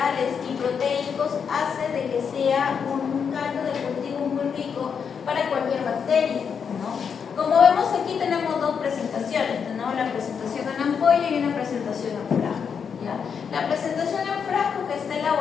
y proteicos hace de que sea un caldo de cultivo muy rico para cualquier bacteria, ¿no? Como vemos aquí tenemos dos presentaciones, tenemos la presentación en ampolla y una presentación en frasco, ¿ya? La presentación en frasco, que está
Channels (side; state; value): right; quieter; 6.7 dB